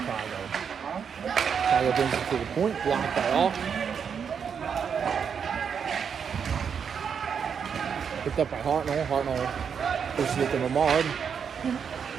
Chicago brings it to the point. Blocked by Alk. Picked up by Hartnell. Hartnell pushes it to Lamard.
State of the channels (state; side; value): quieter; left; 7.0 dB